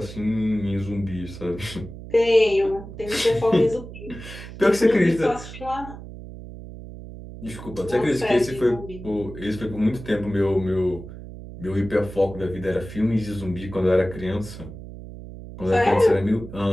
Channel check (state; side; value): noise; right; hum, 13 dB below the sound